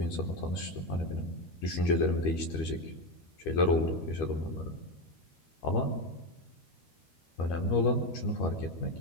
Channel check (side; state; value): right; late; 13 ms